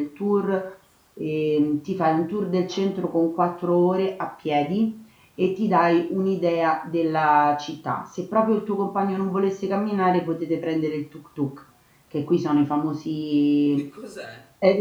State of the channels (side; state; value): both; identical; correlation 1.00